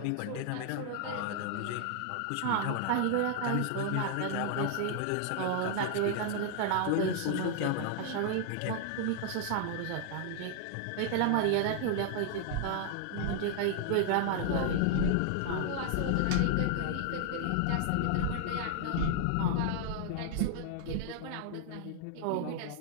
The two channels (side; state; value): both; different; correlation 0.00